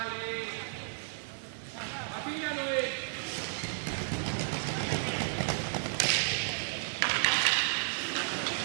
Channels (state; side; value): silent; left; digital silence